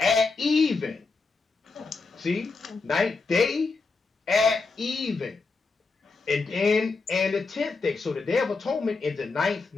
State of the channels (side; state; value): right; quieter; 4.1 dB